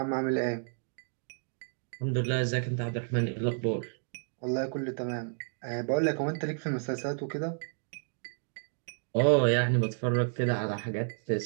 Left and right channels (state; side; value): silent; left; digital silence